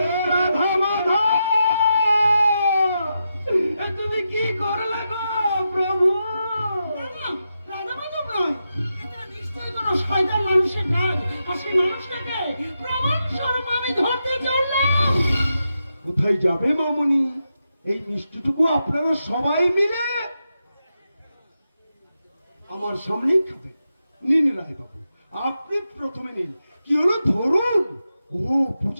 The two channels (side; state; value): both; inverted; correlation -0.87